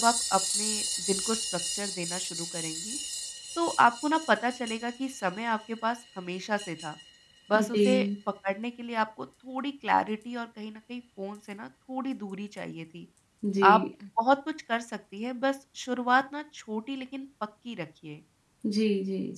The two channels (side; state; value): both; identical; correlation 1.00